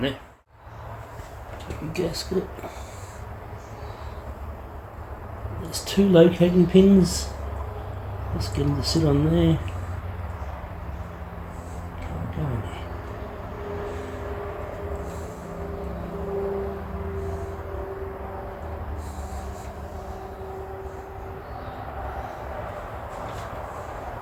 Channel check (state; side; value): identical; both; correlation 1.00